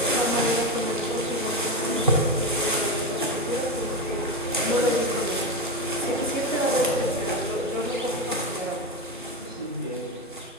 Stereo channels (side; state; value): both; normal; correlation 0.16